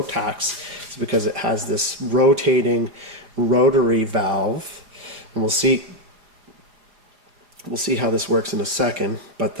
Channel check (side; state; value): left; late; 4.9 ms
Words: is because it has this rotating rotary valve, and we'll see how this works in a second. But